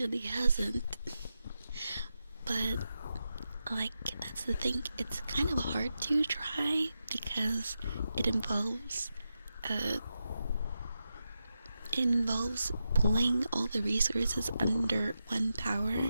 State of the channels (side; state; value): both; inverted; correlation -0.89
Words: hasn't. But, like, that's the thing. It's kind of hard to try because it involves pulling all the resources under one power,